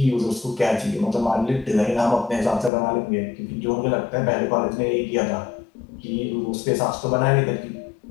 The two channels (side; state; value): right; drops out; at 2.7 s